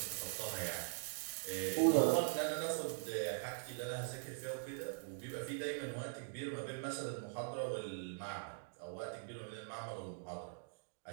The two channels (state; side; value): silent; left; digital silence